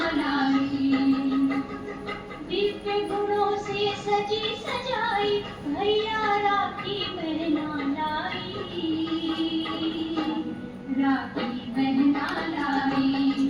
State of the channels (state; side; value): identical; both; correlation 1.00